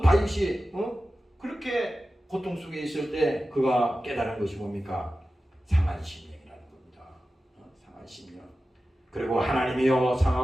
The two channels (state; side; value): normal; both; correlation 0.94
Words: 다윗이 그렇게 고통 속에 있을 때 그가 깨달은 것이 뭡니까? 상한 심령이라는 겁니다. 상한 심령. 그리고 하나님이여